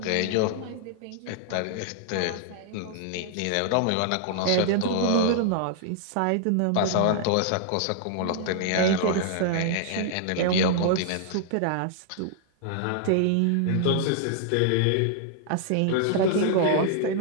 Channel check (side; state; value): both; different; correlation 0.00